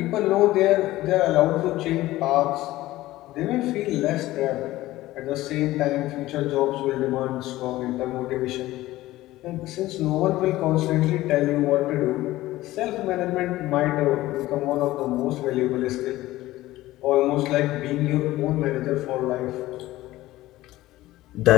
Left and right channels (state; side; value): quieter; right; 16.7 dB